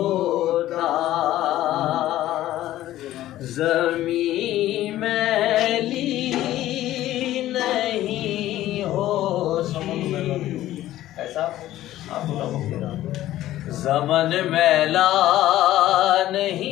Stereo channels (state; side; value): quieter; right; 14.2 dB